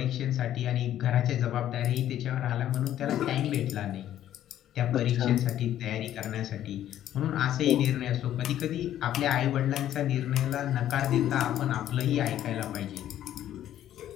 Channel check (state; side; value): quieter; right; 11.8 dB